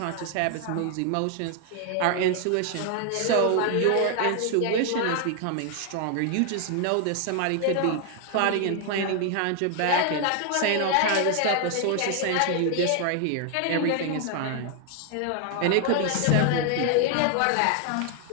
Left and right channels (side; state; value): both; different; correlation 0.00